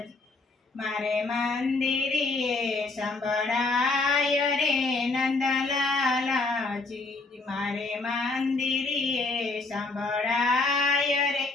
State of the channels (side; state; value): right; quieter; 3.5 dB